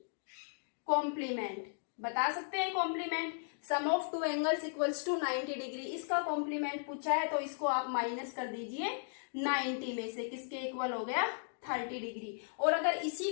कॉम्प्लीमेंट बता सकते हैं complement sum of two angles equals to 90 degree. इसका कॉम्प्लीमेंट पूछा है तो इसको आप माइनस कर दीजिए 90 में से. किसके इक्वल हो गया? 30 डिग्री. और अगर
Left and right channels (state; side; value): silent; right; digital silence